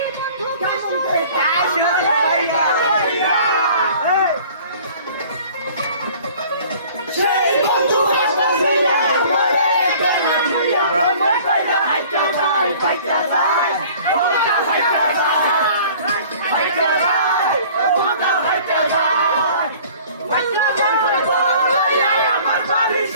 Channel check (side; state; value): both; inverted; correlation -0.50